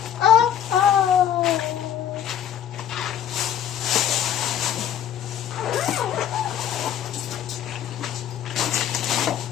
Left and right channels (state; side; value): quieter; right; 9.9 dB